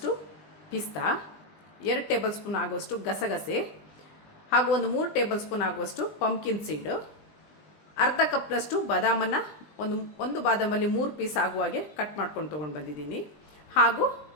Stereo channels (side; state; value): right; late; 20 ms